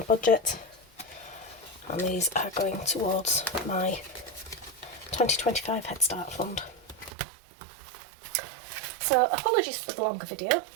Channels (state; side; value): drops out; left; at 7.1 s